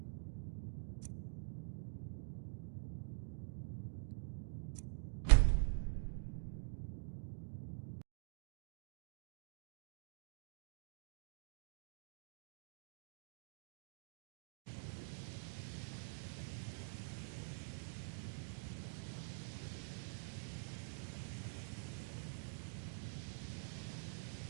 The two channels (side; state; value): left; silent; digital silence